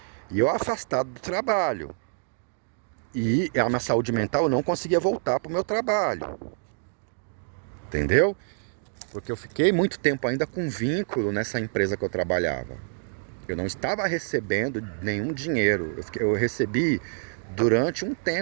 E eu afastado do trabalho. E a minha saúde mental, eu não conseguia voltar para o meu trabalho. Entendeu? Porque eu fiquei muito tempo ainda com vínculo nessa empresa que eu trabalhava. Eu não estava recebendo nenhum dinheiro. Eu recebi durante um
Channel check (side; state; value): left; silent; digital silence